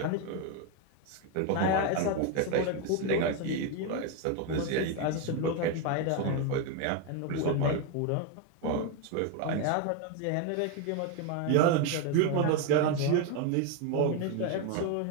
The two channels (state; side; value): different; both; correlation 0.02